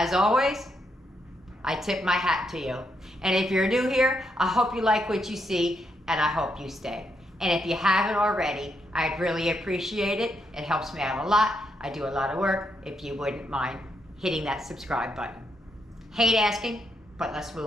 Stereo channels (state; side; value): normal; both; correlation 0.79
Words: always, I tip my hat to you. And if you're new here, I hope you like what you see, and I hope you stay. And if you haven't already, I'd really appreciate it. It helps me out a lot. I do a lot of work. If you wouldn't mind hitting that subscribe button. Hate asking, but let's